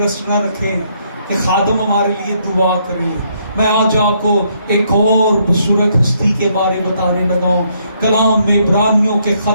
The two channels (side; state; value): both; inverted; correlation -0.71